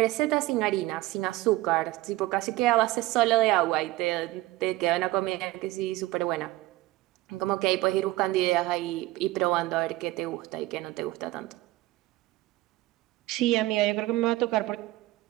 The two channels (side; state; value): left; quieter; 18.1 dB